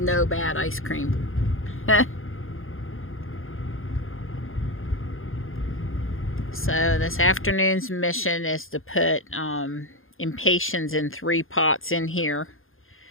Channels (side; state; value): right; late; 0.60 ms